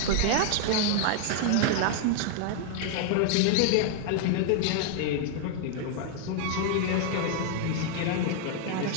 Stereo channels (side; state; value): both; different; correlation 0.00